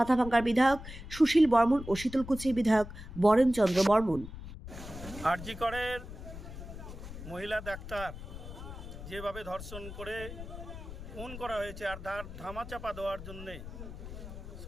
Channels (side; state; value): left; noise; rumble, 11 dB below the sound